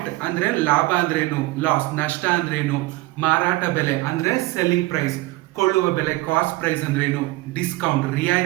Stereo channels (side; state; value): left; quieter; 19.9 dB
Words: ಅಂದ್ರೆ ಲಾಭ ಅಂದ್ರೇನು, ಲಾಸ್ ನಷ್ಟ ಅಂದ್ರೇನು, ಮಾರಾಟ ಬೆಲೆ ಅಂದ್ರೆ ಸೆಲ್ಲಿಂಗ್ ಪ್ರೈಸ್, ಕೊಳ್ಳುವ ಬೆಲೆ ಕಾಸ್ಟ್ ಪ್ರೈಸ್ ಅಂದ್ರೇನು, ಡಿಸ್ಕೌಂಟ್